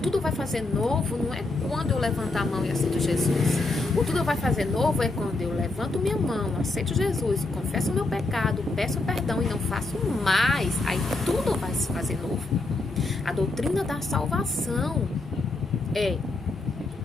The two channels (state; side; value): quieter; right; 3.1 dB